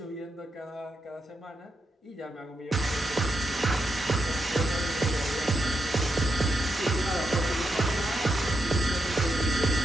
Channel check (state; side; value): normal; both; correlation 0.83